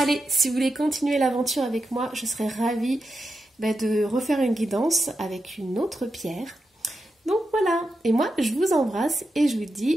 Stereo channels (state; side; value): normal; both; correlation 0.88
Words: si vous voulez continuer l'aventure avec moi, je serais ravie de refaire une guidance avec une autre pierre. Donc voilà. Et moi, je vous embrasse et je vous